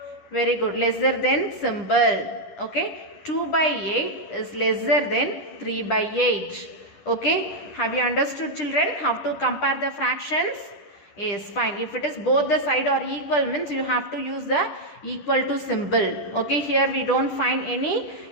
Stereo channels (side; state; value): right; late; 10 ms